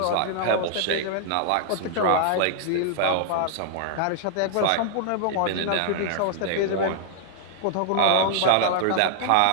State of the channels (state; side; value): different; both; correlation -0.01